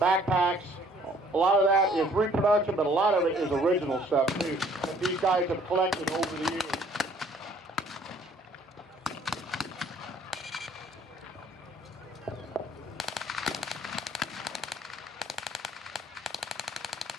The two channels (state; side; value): normal; both; correlation 0.59